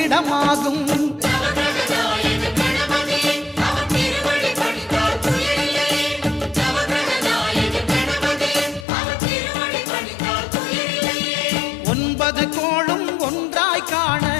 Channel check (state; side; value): drops out; right; at 8.8 s